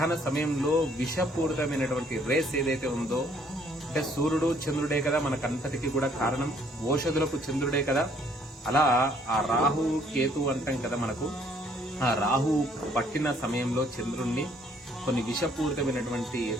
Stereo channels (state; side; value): normal; both; correlation 0.63